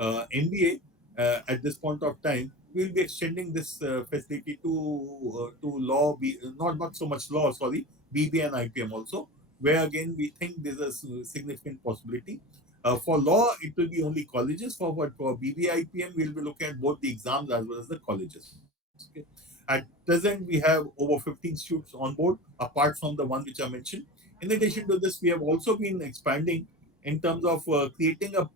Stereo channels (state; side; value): normal; both; correlation 0.30